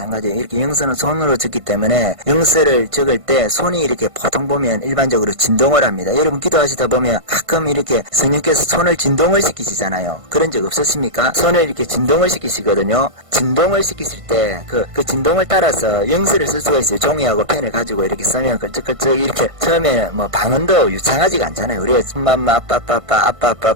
이렇게 영서는 손으로 적기 때문에 영서를 적을 때 손이 이렇게 보통 보면 일반적으로 진동을 합니다. 여러분 기도하시다 보면 가끔 이렇게 성령께서 손을 진동을 시키시잖아요. 그런 적 없었습니까? 손을 이렇게 진동을 시키시거든요. 진동을 시키실 때 그 진동을 따라서 영서를 쓸 수가 있어요. 종이하고 펜을 가지고 이렇게 쓰면 끌적끌적 이렇게 처음에는 뭐 방언도 유창하지가 않잖아요. 우리가 엄마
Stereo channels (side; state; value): left; late; 1.5 ms